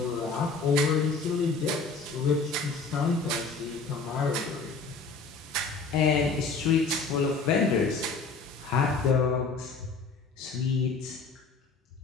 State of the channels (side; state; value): right; quieter; 4.3 dB